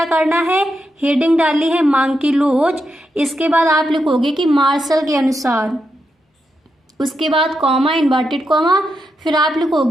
करना है, हेडिंग डाली है मांग की लोच। इसके बाद आप लिखोगे कि मार्शल के अनुसार, उसके बाद कॉमा, इन्वर्टेड कॉमा, फिर आप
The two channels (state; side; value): normal; both; correlation 0.85